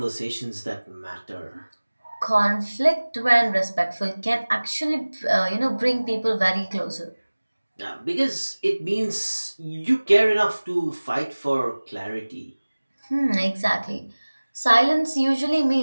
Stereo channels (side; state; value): both; inverted; correlation -1.00